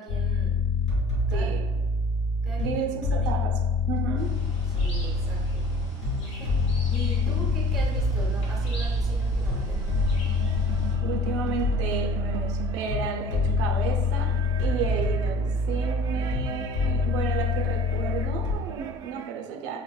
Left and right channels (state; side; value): normal; both; correlation 0.47